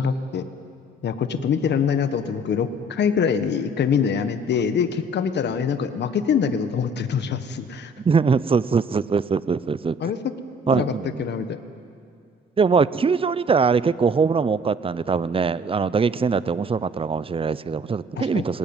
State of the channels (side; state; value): both; normal; correlation 0.54